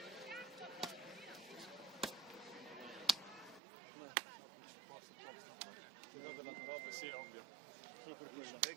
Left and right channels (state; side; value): drops out; left; at 3.6 s